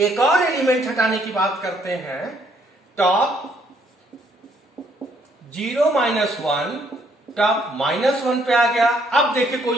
और एलिमेंट हटाने की बात करते हैं, टॉप 0 माइनस 1, टॉप माइनस 1 पे आ गया। अब देखिए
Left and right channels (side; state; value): both; normal; correlation 0.67